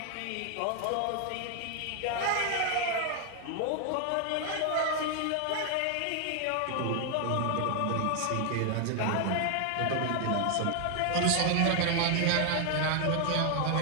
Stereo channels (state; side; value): different; both; correlation 0.00